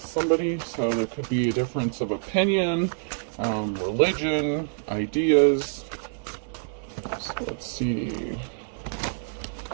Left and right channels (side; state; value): left; silent; 60 dB below the other